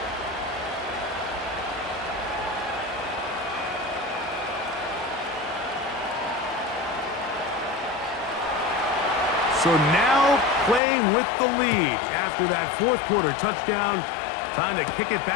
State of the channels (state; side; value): drops out; right; at 10.8 s